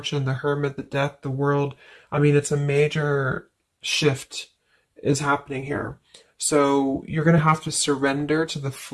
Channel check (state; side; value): identical; both; correlation 1.00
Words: the Hermit, the Death, the World, it's a major shift is happening here. So you're going to have to surrender to the